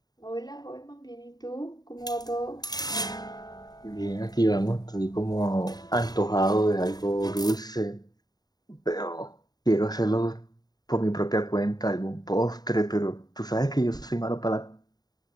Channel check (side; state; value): right; late; 0.19 ms